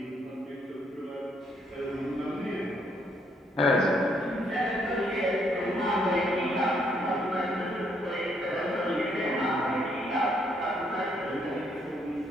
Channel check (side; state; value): both; normal; correlation 0.71